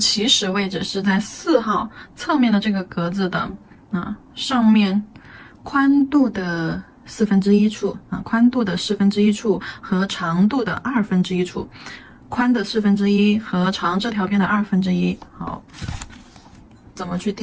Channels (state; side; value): identical; both; correlation 1.00